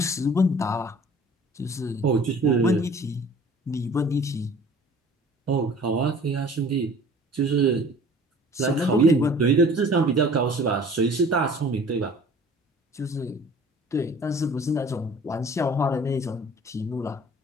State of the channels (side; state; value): both; normal; correlation 0.48